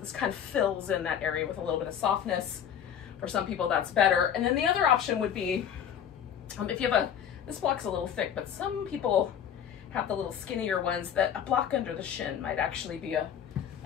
kind of fills in that area with a little bit of softness. For some people, that's better. And then the other option would be, if you have this block's a little thick, but some people have the little skinnier ones that a block under the shin might actually be a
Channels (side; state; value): right; quieter; 8.9 dB